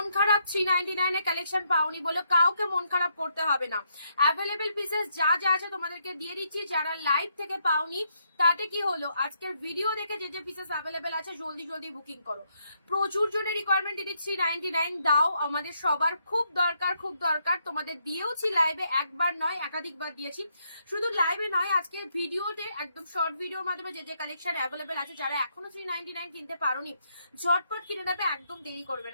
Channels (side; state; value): both; inverted; correlation -0.76